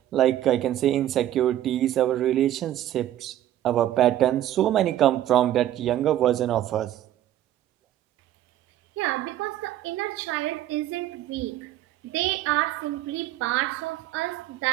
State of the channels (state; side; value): quieter; left; 12.7 dB